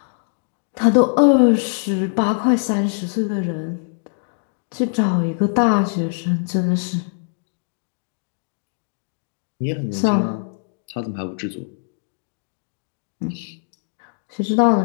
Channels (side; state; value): right; silent; digital silence